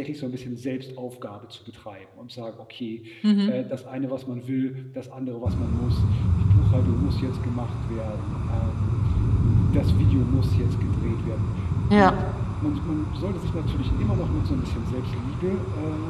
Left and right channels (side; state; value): both; identical; correlation 1.00